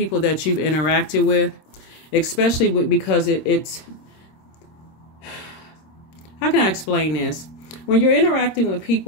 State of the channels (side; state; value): right; late; 26 ms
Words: you've interacted with, especially because it's, how can I explain this? When you're interacting with